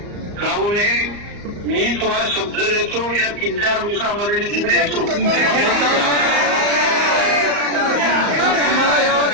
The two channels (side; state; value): left; late; 34 ms